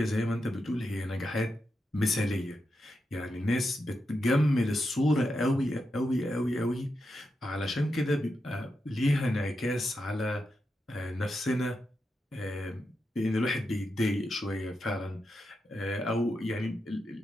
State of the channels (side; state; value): both; normal; correlation 0.86